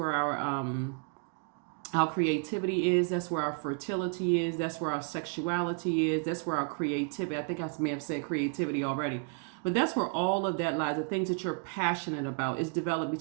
our creativity is. That's where our fertility is. That's where our sexuality is. That's where our creativity. I think I may have said creativity already. But that's where all of that lies. The things that you're passionate about is developed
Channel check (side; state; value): left; quieter; 37.5 dB